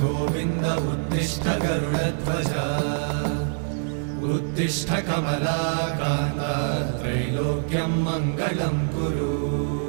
उत्तिष्ठ गरुडध्वज उत्तिष्ठ कमलाकान्त त्रैलोक्यं मङ्गलं कुरु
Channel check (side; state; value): left; silent; 58 dB below the other